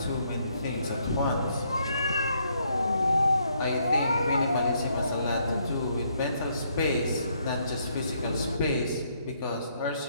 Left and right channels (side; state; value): both; inverted; correlation -0.72